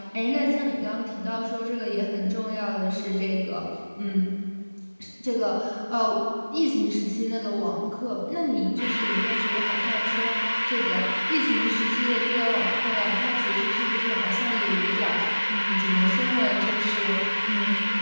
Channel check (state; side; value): inverted; both; correlation -1.00